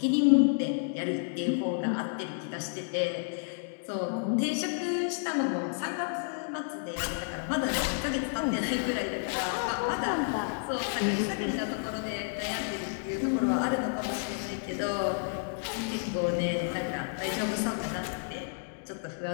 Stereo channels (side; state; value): right; silent; digital silence